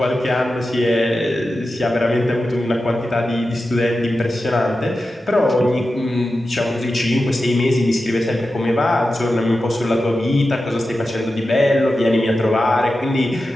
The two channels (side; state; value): both; normal; correlation 0.92